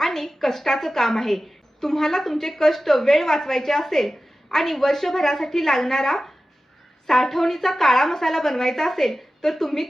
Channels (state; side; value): normal; both; correlation 0.95